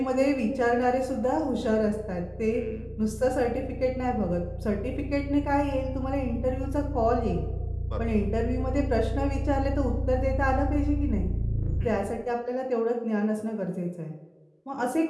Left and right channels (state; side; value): identical; both; correlation 1.00